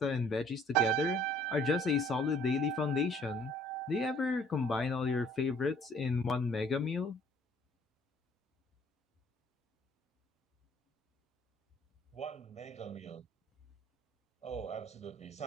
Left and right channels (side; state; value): both; normal; correlation 0.58